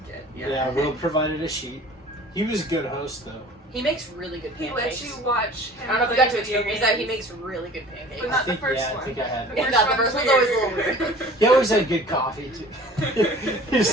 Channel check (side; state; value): both; normal; correlation 0.45